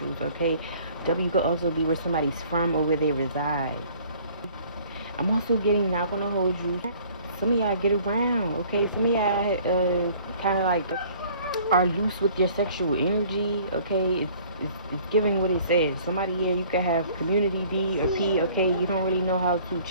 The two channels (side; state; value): both; inverted; correlation -0.54